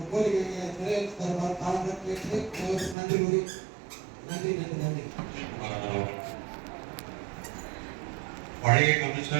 கோரிக்கையை நிறைவேற்றி தருமாறு தாழ்ந்து கேட்டு நன்றி கூறி நன்றி. பழைய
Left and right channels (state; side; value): drops out; left; at 3.0 s